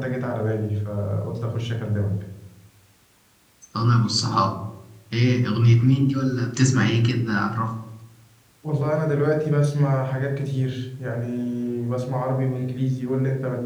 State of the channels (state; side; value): identical; both; correlation 1.00